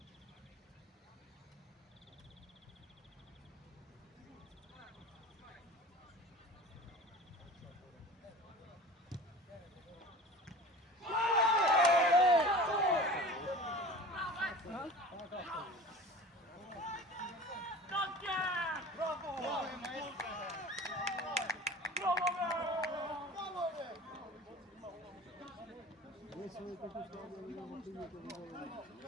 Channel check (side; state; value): both; normal; correlation 0.39